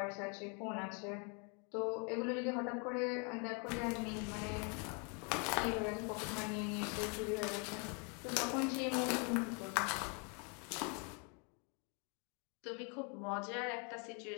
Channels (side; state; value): right; quieter; 36.1 dB